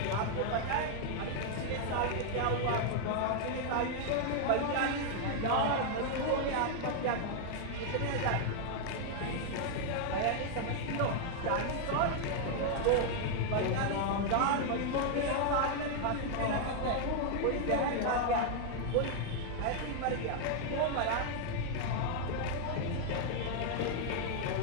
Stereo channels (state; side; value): different; both; correlation 0.00